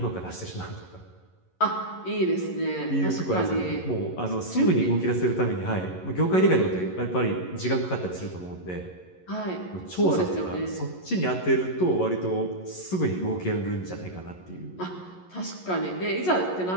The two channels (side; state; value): right; late; 11 ms